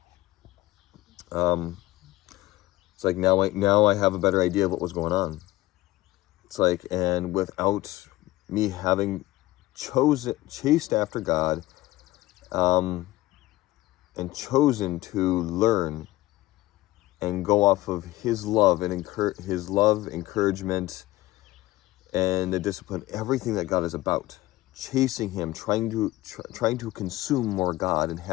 It's like now I have a better idea of what was going on. It's like, and without me having chased after God, and chosen to learn and go off of His love and His love, encouragement, and the discipline, everything that God is about, chasing Him, trying to consume more God and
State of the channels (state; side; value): quieter; right; 17.8 dB